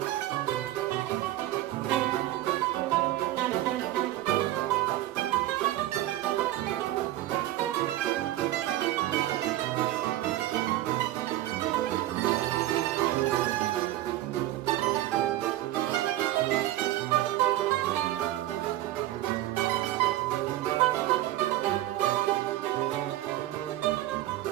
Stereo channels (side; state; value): left; quieter; 15.0 dB